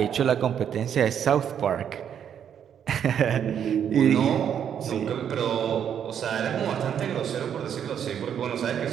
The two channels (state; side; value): quieter; left; 8.7 dB